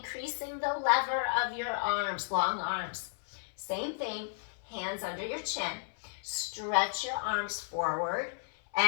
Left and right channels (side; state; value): right; silent; 55 dB below the other